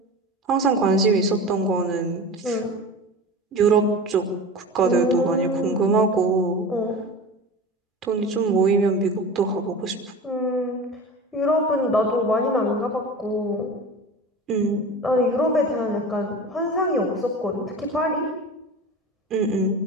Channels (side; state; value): both; normal; correlation 0.32